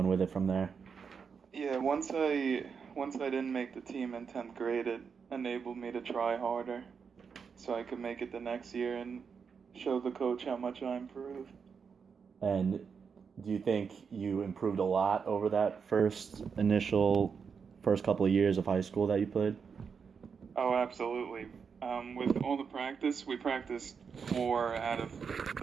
with it from there? Yeah, once I didn't make the team in 10th grade, it enabled me to try harder so I could make it the next year and show the coach how much I improved. And do you think you improved a lot over that first couple of years of high school that you played? Oh, absolutely. With all the practice, we practiced 4 out of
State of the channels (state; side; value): quieter; left; 6.1 dB